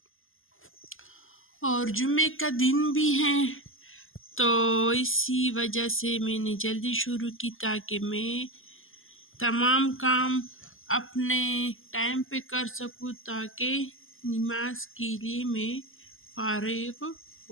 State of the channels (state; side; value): late; right; 0.59 ms